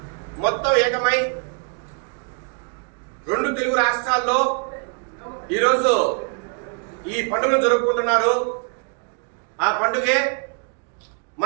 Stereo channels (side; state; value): left; quieter; 39.5 dB